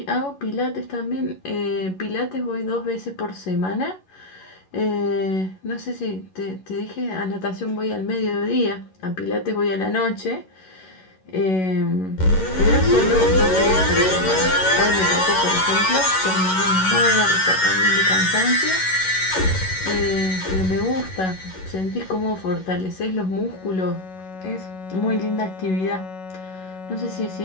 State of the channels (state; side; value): late; right; 11 ms